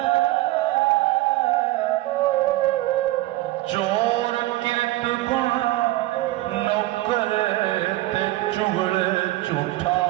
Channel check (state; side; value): quieter; left; 17.7 dB